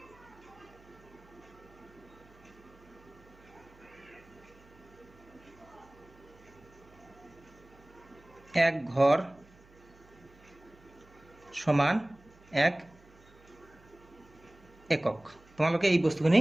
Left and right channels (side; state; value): right; noise; hum, 25 dB below the sound